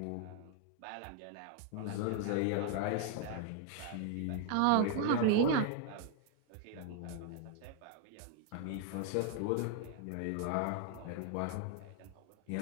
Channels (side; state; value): both; different; correlation 0.00